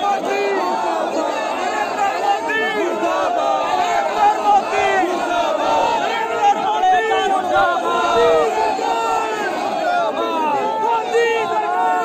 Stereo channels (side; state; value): both; identical; correlation 1.00